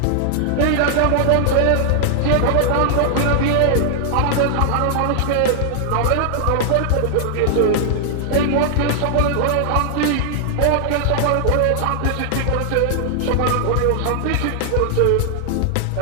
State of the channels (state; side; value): different; both; correlation -0.01